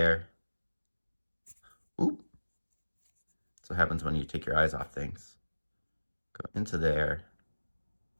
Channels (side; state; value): both; inverted; correlation -1.00